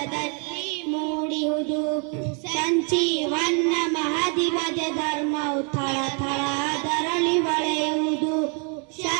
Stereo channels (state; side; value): quieter; left; 38.9 dB